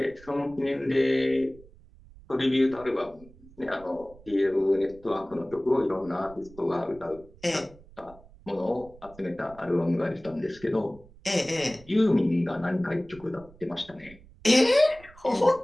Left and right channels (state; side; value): noise; right; rumble, 23 dB below the sound